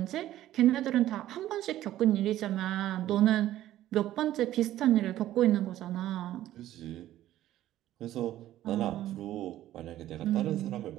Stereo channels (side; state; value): left; quieter; 13.6 dB